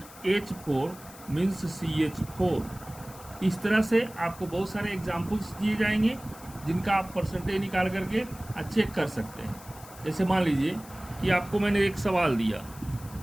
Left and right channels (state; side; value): noise; left; hiss, 19 dB below the sound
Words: मीन्स CH4। इस तरह से आपको बहुत सारे एग्जाम्पल्स दिए जाएंगे जिनका आप परसेंटेज निकाल करके चेक कर सकते हैं। जैसे मान लीजिए कि आपको मैंने एक सवाल दिया,